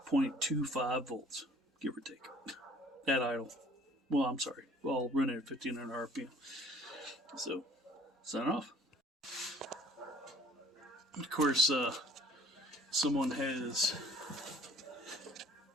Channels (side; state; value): both; normal; correlation 0.54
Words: volts, give or take, at idle. Well, I'm sorry. Well, running at 1500 RPM. So, sign off. Of course, someone has,